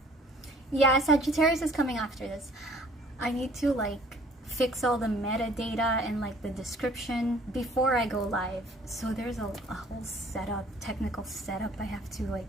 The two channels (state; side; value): normal; both; correlation 0.55